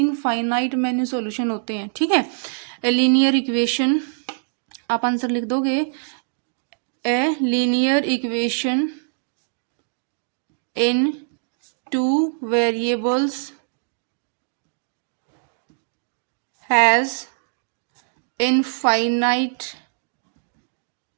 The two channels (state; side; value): silent; left; digital silence